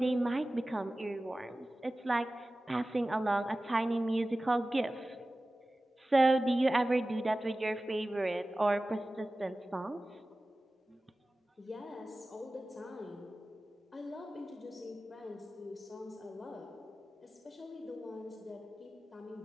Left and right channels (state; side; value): normal; both; correlation 0.96